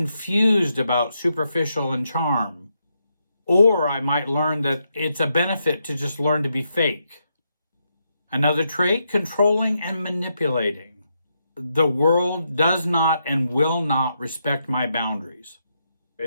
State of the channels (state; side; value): inverted; both; correlation -0.81